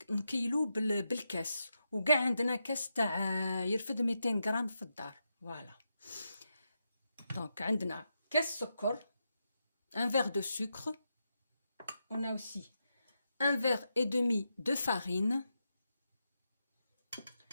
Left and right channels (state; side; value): inverted; both; correlation -0.85